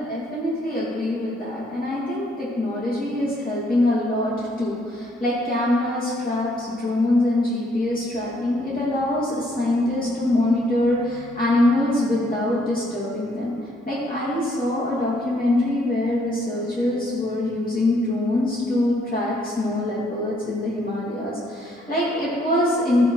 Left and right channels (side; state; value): both; normal; correlation 0.68